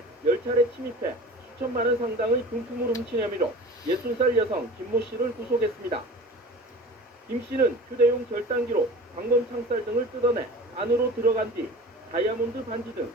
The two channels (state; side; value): normal; both; correlation 0.38